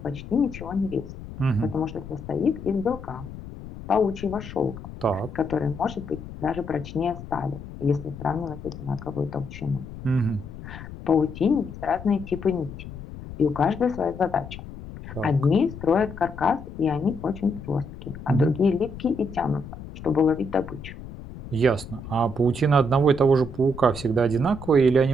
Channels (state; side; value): noise; left; rumble, 12 dB below the sound